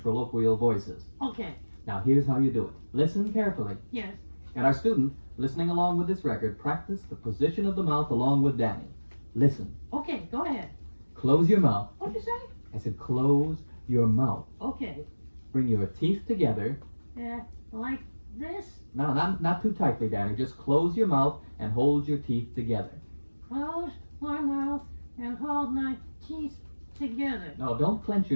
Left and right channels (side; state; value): both; inverted; correlation -1.00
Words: voices. Okay. Now, here's how you do it. Listen carefully. Yes. And our student, listening along with this record, practice the position of the mouth along with Danny. Listen. Okay, go ahead. Close your mouth. What'd you say? I said close your mouth. Okay. Bring your teeth together. Like this? No, not too tightly, Danny. Just close your mouth and hold your teeth together. Close my mouth and hold my teeth together. No, don't clench